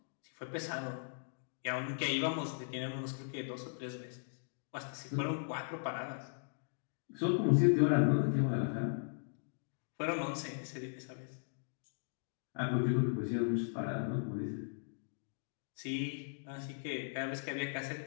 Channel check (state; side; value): silent; right; digital silence